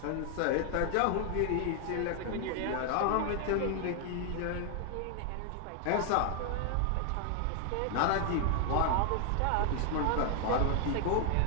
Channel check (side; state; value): both; different; correlation 0.00